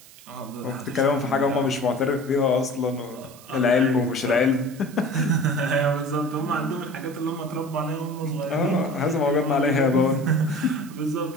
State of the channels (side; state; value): right; noise; hiss, 21 dB below the sound